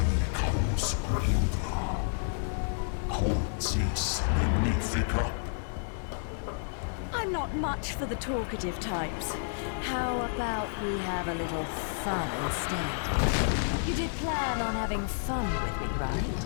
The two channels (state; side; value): silent; right; digital silence